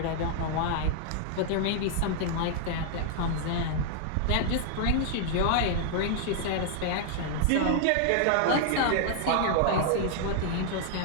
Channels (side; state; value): both; different; correlation -0.01